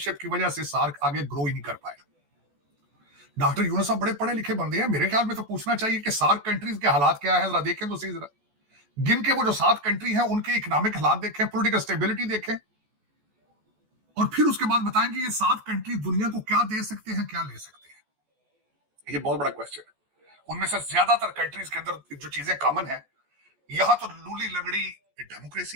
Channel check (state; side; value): late; left; 14 ms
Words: की वजह से सार्क आगे ग्रो ही नहीं कर पाएगा। डॉक्टर यूनुस साहब बड़े पढ़े लिखे बंदे हैं, मेरे ख्याल में तो पूछना चाहिए कि सार्क कंट्रीज के हालात क्या है, जरा देखें तो सही, जरा गिन के वो जो 7 कंट्री हैं उनके इकोनॉमिक हालात देखें, पॉलिटिकल स्टेबिलिटी देखें, और फिर उसके बाद बताएंगे ये 7 कंट्री दुनिया को क्या दे सकते हैं, क्या ले सकते हैं। ये बहुत बड़ा क्वेश्चन है। उनमें से ज्यादातर कंट्रीज के अंदर जो चीजें कॉमन है, यहां तो लूली लगड़ी